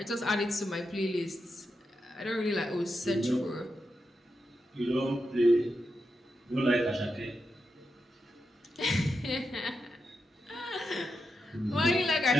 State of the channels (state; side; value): normal; both; correlation 0.86